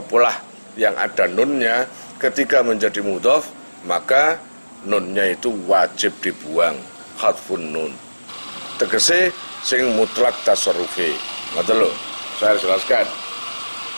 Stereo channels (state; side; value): inverted; both; correlation -1.00